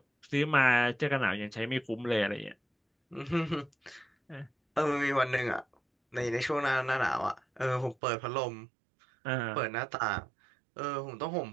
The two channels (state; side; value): drops out; left; at 8.0 s